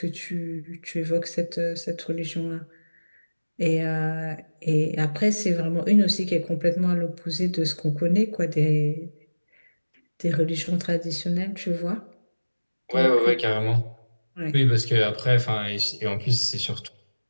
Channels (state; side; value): inverted; both; correlation -1.00